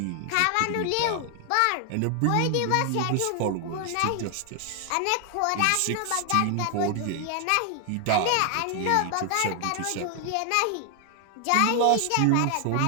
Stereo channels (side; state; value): both; different; correlation 0.00